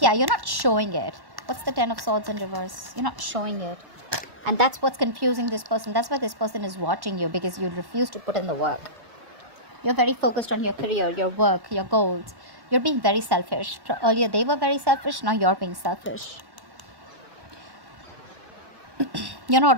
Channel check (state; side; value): late; left; 1.1 ms